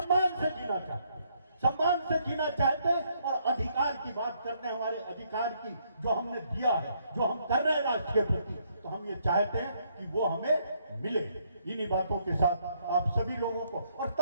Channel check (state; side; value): inverted; both; correlation -0.71